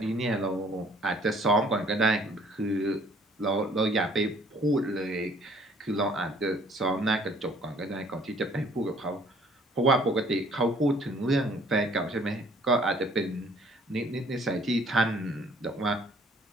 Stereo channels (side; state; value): both; normal; correlation 0.58